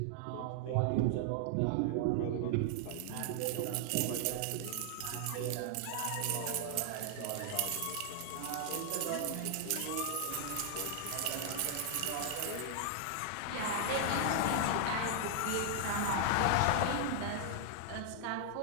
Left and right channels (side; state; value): both; different; correlation 0.00